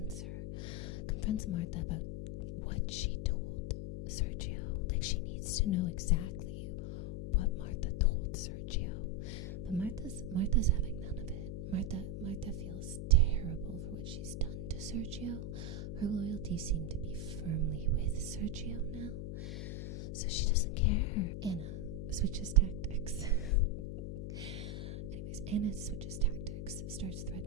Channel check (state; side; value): noise; left; hum, 5 dB below the sound